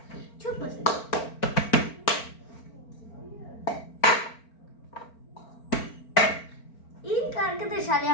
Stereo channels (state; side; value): late; right; 4.4 ms